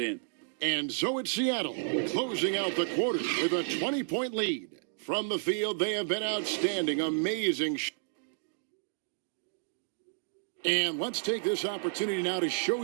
And so it's Seattle closing out the quarter with a 20-point lead. From the field, they have been outstanding, amazing. And let's take this opportunity now to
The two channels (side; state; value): left; silent; digital silence